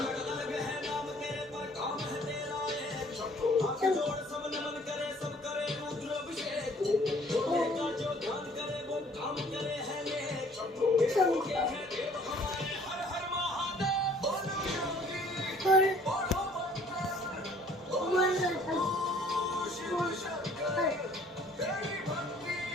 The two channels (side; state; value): both; normal; correlation 0.57